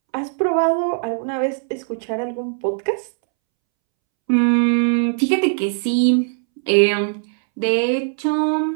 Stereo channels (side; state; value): left; silent; 66 dB below the other